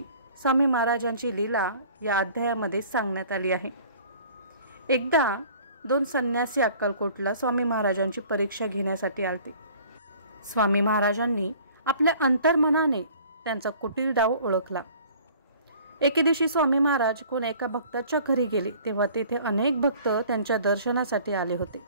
स्वामी महाराजांची लीला या अध्यायामध्ये सांगण्यात आली आहे। एकदा 2 संन्यासी अक्कलकोटला स्वामी महाराजांची परीक्षा घेण्यासाठी आलते। स्वामी महाराजांनी आपल्या अंतर्मनाने त्यांचा कुटील डाव ओळखला। एके दिवशी स्वामी महाराज कोण एका भक्ताच्या घरी गेले तेव्हा तेथे अनेक भक्त त्यांच्या दर्शनासाठी आले होते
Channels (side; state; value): both; inverted; correlation -0.51